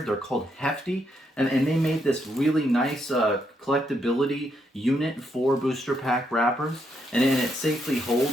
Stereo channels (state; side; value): normal; both; correlation 0.78